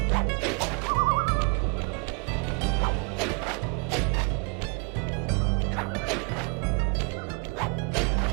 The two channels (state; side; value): quieter; left; 33.5 dB